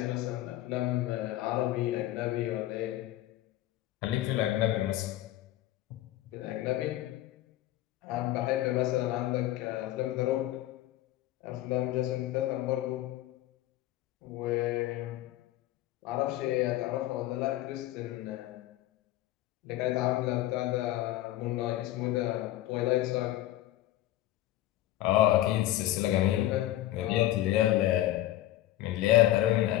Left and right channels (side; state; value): right; quieter; 14.8 dB